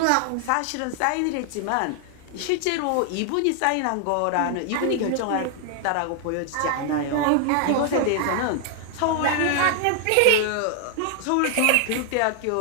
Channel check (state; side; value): different; both; correlation 0.00